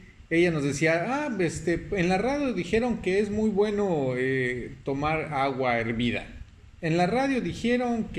ella nos decía, en la radio dijeron que es muy bueno tomar agua hervida. En la radio dijeron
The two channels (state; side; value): identical; both; correlation 1.00